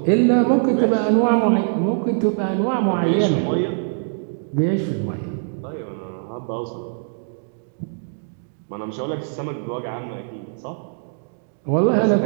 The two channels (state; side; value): silent; left; digital silence